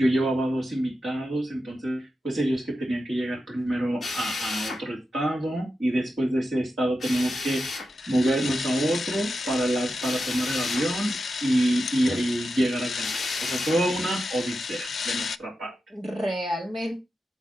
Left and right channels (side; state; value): both; normal; correlation 0.90